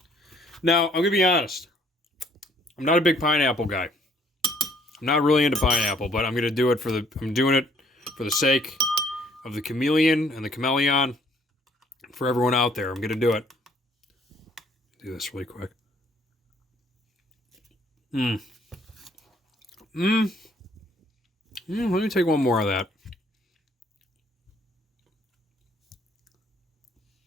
Now, I'm going to be honest. I'm not a big pineapple guy. I'm not really into pineapple, but I'm doing it for the sake of the chameleon and the Chmelaeon. For everyone out there, I'm going to do it. Do this really quick. Let me take one more of that.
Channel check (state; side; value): normal; both; correlation 0.62